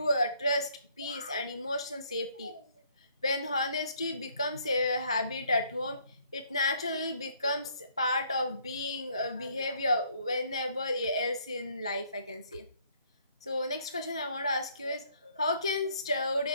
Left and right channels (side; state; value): both; inverted; correlation -0.65